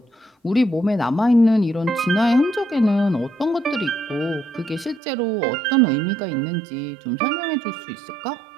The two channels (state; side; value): drops out; left; at 5.0 s